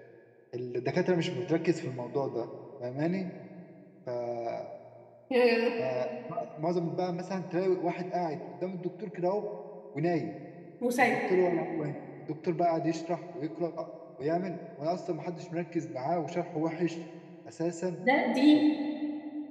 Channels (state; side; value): identical; both; correlation 1.00